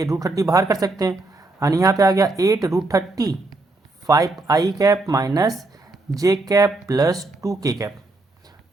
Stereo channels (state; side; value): quieter; left; 3.0 dB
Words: रूट 30 बाहर कर सकते हैं यानी यहाँ पे आ गया 8 रूट 30 5i कैप माइनस जे कैप प्लस 2k कैप।